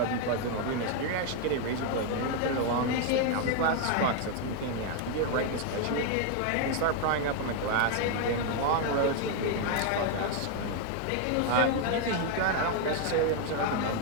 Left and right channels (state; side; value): different; both; correlation 0.01